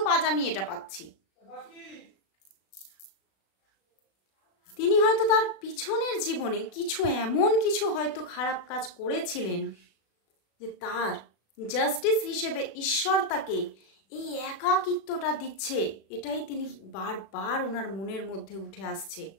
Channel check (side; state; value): right; late; 36 ms